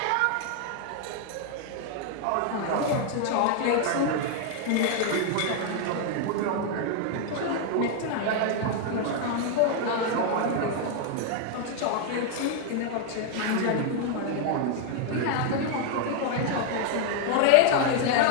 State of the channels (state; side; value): different; both; correlation 0.00